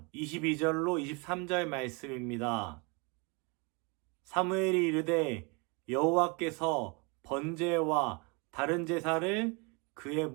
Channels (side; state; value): left; quieter; 30.8 dB